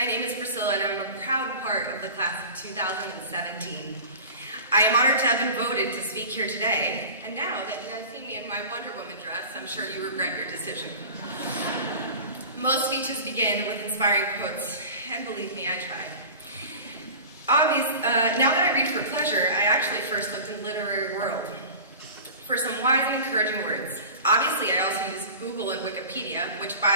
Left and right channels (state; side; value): inverted; both; correlation -0.37